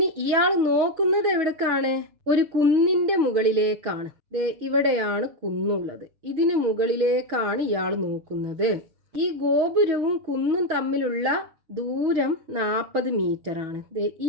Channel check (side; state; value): left; late; 6.3 ms